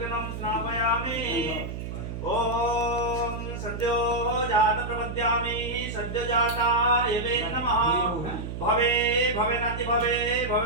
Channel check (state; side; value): noise; right; hum, 7 dB below the sound